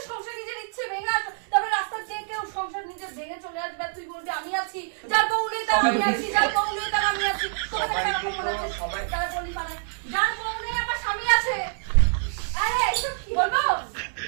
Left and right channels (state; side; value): silent; left; digital silence